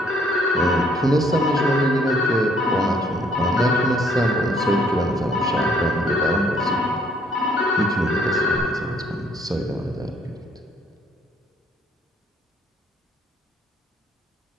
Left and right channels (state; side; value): normal; both; correlation 0.64